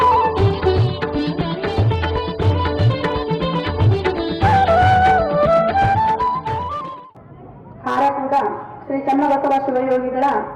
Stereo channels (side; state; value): both; identical; correlation 1.00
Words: ಹಾರಕೂಡ ಶ್ರೀ ಚನ್ನಬಸವ ಶಿವಯೋಗಿಗಳ